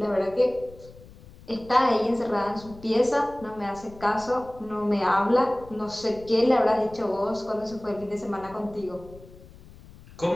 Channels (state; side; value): noise; left; rumble, 20 dB below the sound